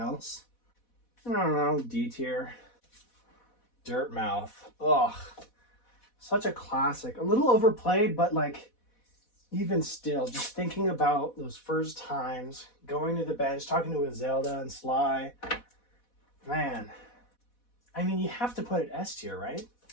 I don't know, D tier. Dirt Mouth. Ugh. Such a classic. A little overplayed, but like, even still, just thinking about those first times, going to the bench, talking to Zelda and Sly. Man. I mean, you have to put it S tier, right?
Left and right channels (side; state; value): right; late; 4.1 ms